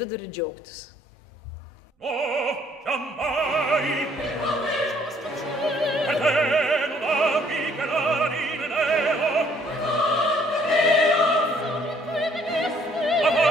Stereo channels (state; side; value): normal; both; correlation 0.63